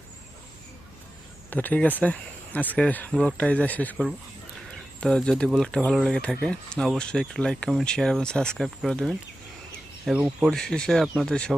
তো ঠিক আছে, আজকে ব্লগটা এই যা শেষ করব। তো যদি ব্লগটা ভালো লেগে থাকে অবশ্যই একটু লাইক, কমেন্ট, শেয়ার এবং সাবস্ক্রাইব করে দেবেন। এবং পরিশেষে আপনাদের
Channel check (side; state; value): right; noise; hum, 26 dB below the sound